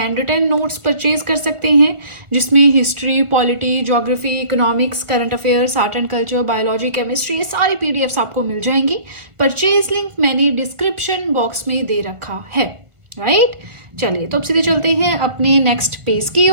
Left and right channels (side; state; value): left; late; 1.5 ms